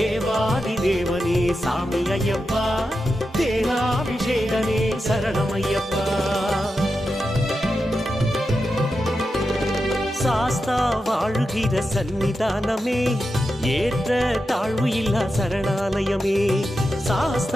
தேவனே சாமி ஐயப்பா, தேனாபிஷேகனே சரணமையப்பா. சாஸ்தா வாழுகிற சன்னிதானமே, ஏற்ற தாழ்வு இல்லா சரணாலயமே.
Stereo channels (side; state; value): both; normal; correlation 0.89